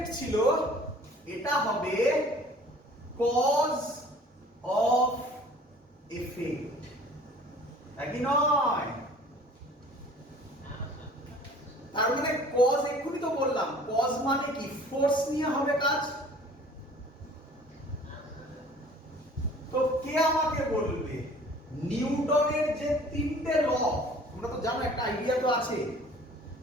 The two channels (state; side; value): normal; both; correlation 0.49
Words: ছিল, এটা হবে কজ অফ এফেক্ট, নাকি নয়? তার মানে কজ, এক্ষুনি তো বললাম, কজ মানে কি? ফোর্স নিয়ে হবে কাজ। তো কে আমাকে বলবে নিউটনের যে তিনটে ল, তোমরা তো জানো, একটা আইডিয়া তো আছে,